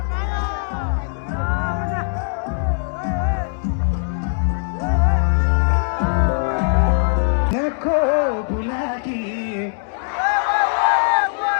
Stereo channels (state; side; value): silent; right; 66 dB below the other